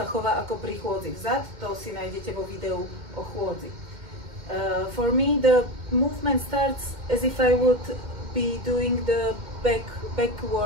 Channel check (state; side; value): late; left; 2.1 ms